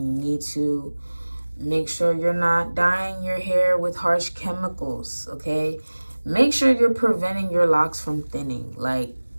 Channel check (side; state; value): both; inverted; correlation -1.00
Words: you need to. Make sure you're not dyeing your hair with harsh chemicals, okay? Make sure you're preventing your locks from thinning. Like,